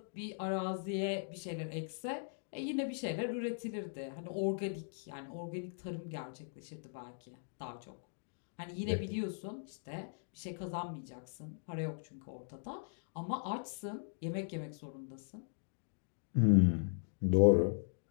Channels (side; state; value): right; silent; digital silence